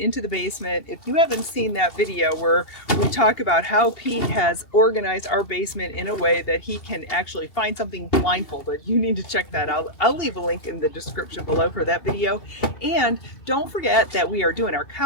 the basement. If you haven't seen that video where we talk about how Pete has organized our basement in a way that he can actually find something blindfolded, you need to check that out. I'll leave a link in the description below for that video. And don't forget that we are doing our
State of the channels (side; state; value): right; late; 2.8 ms